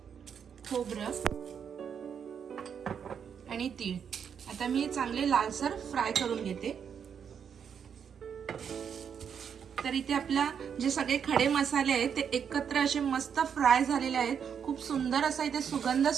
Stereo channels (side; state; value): left; quieter; 7.5 dB